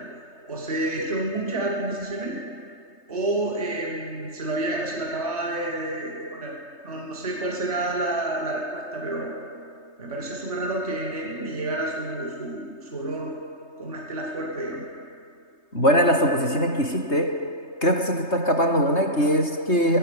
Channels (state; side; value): late; right; 3.3 ms